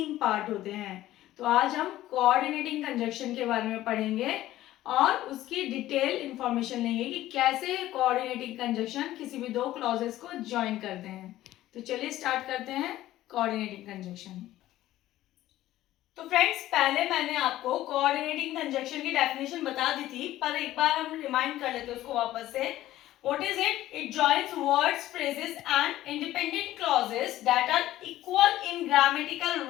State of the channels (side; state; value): right; quieter; 14.7 dB